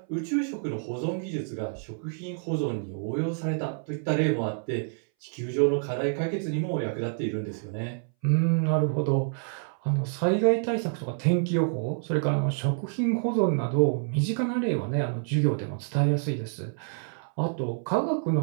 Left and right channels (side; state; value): left; silent; 60 dB below the other